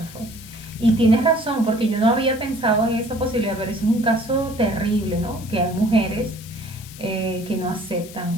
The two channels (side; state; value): left; noise; hiss, 17 dB below the sound